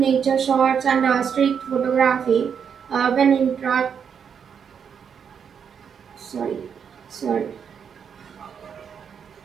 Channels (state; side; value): quieter; left; 7.2 dB